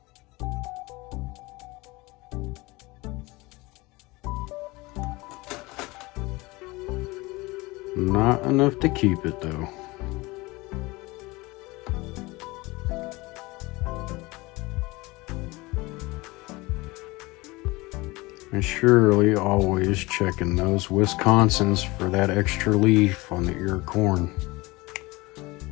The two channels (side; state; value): right; quieter; 22.5 dB